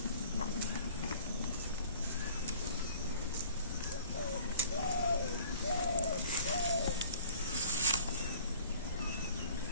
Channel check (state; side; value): inverted; both; correlation -0.49